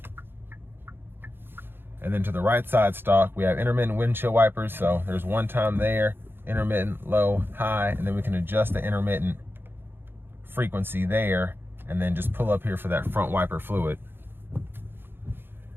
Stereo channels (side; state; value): left; late; 0.10 ms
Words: And then to the right side stock, we have intermittent windshield wipers. So there's one time there, intermittent, low, high, and then we can adjust the intermittent frequency there and then just pull up here for that front wiper fluid.